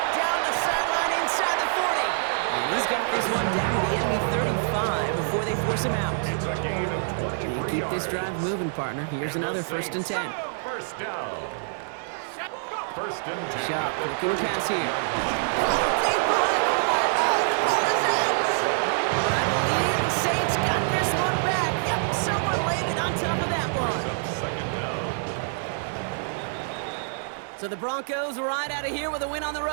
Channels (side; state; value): left; silent; digital silence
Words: Down the sideline inside the 40. And he's got this one down to the enemy 35 before they force him out. It's a gain of 23 And keep this drive moving, partner. Here's another 1st and 10. 1st down. 1st and 10. Shot, looking to pass here. Deep behind the line. Oh, the ball is out. But I believe the Saints got this one back. Yep, someone landed on top of that one. 2nd down. So the Broncos ride out of here with a win on the